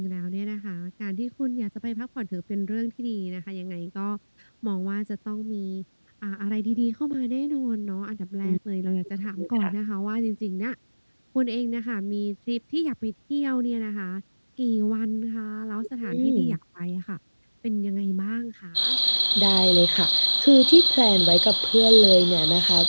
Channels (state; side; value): inverted; both; correlation -1.00